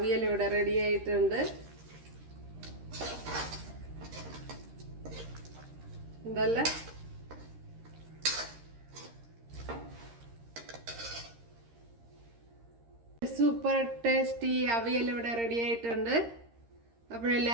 ഇവിടെ റെഡി ആയിട്ടുണ്ട്. എന്തല്ല സൂപ്പർ ടേസ്റ്റി അവിയൽ ഇവിടെ റെഡി ആയിട്ടുണ്ട്.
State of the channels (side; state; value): left; late; 13 ms